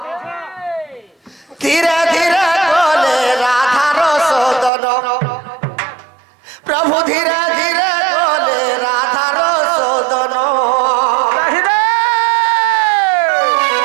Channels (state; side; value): drops out; left; at 4.7 s